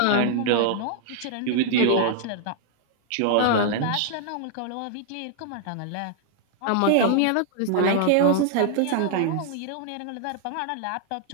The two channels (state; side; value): different; both; correlation 0.00